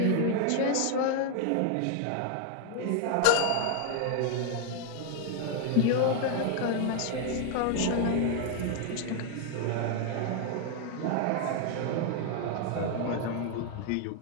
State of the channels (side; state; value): both; different; correlation 0.00